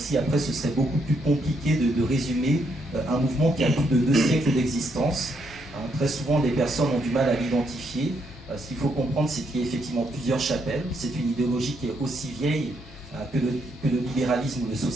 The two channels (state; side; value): normal; both; correlation 0.75